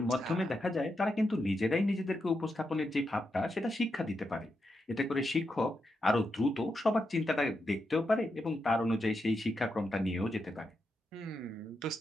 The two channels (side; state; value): both; normal; correlation 0.85